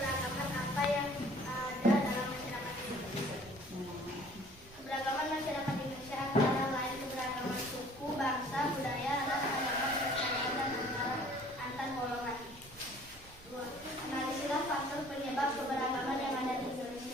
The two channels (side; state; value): both; normal; correlation 0.53